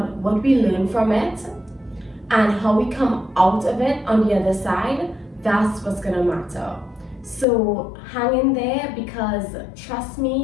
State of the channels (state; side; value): drops out; right; at 7.5 s